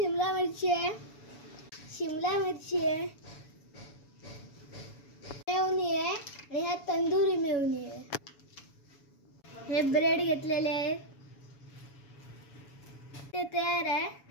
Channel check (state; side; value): late; right; 7.1 ms